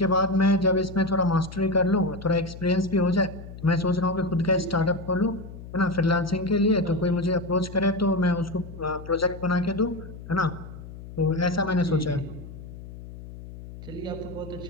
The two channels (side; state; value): left; noise; hum, 14 dB below the sound